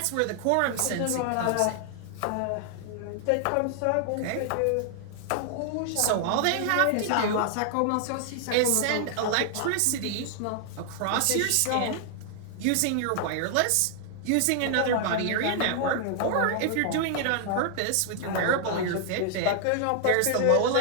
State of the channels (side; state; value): both; different; correlation 0.00